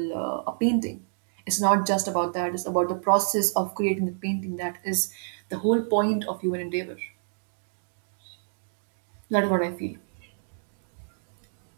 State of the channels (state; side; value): silent; left; digital silence